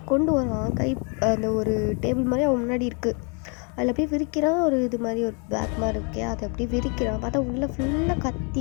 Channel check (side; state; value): right; quieter; 36.4 dB